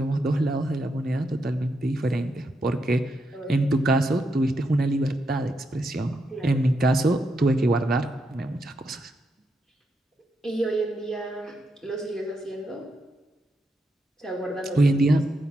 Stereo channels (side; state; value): both; normal; correlation 0.82